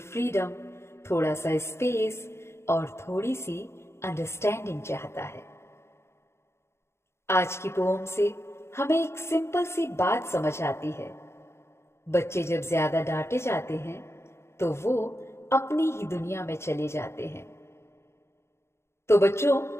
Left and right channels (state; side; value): late; right; 0.13 ms